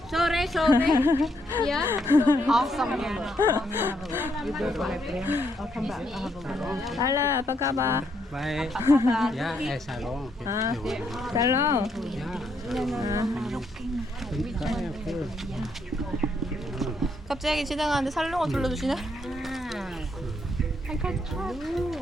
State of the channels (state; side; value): normal; both; correlation 0.75